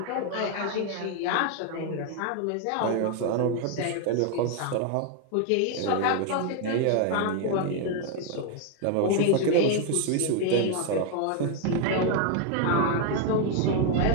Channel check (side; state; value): both; different; correlation 0.01